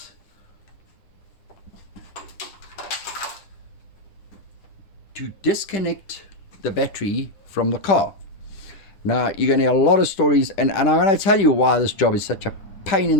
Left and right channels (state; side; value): late; right; 9.8 ms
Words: to disconnect the battery from the car. Now, you're going to hear a lot of stories, and I'm going to tell you why this job is such a pain